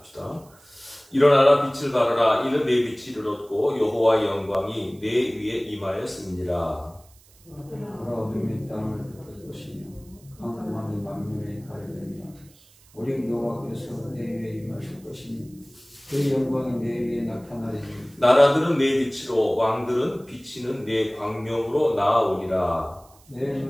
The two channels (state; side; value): noise; right; hiss, 28 dB below the sound